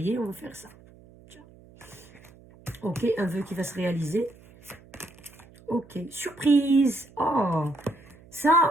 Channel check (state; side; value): noise; right; hum, 24 dB below the sound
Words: On va faire ça. Tiens. Ok, un vœu qui va se réaliser. Ok, surprise. Oh, ça,